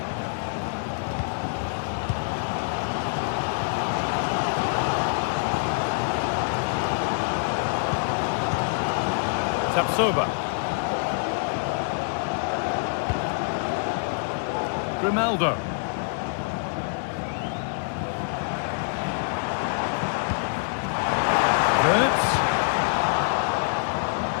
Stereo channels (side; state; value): right; silent; 61 dB below the other